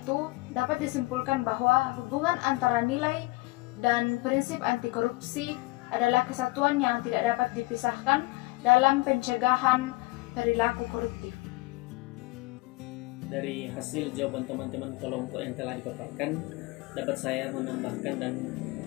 dapat disimpulkan bahwa hubungan antara nilai dan prinsip anti korupsi adalah kesatuan yang tidak dapat dipisahkan dalam pencegahan perilaku koruptif. Dari hasil jawaban teman-teman kelompok yang telah dipaparkan, dapat saya menambahkan dan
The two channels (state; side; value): quieter; right; 22.1 dB